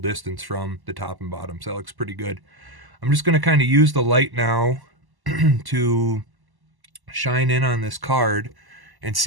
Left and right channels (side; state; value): left; late; 1.1 ms